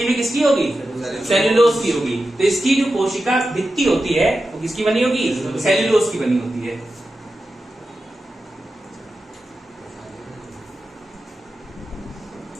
भी किसकी होगी? सेल्यूलोज की होगी। तो इसकी जो कोशिका भित्ति होती है वो किसकी बनी होगी? सेल्यूलोज की बनी होती है।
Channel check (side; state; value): both; normal; correlation 0.91